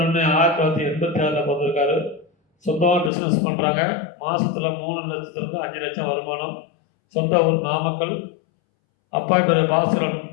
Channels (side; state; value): right; drops out; at 3.1 s